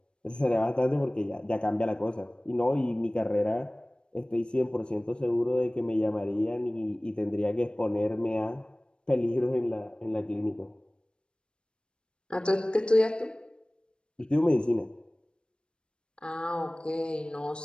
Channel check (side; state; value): right; late; 0.054 ms